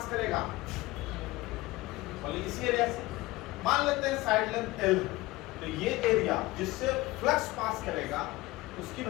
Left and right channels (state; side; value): quieter; right; 19.8 dB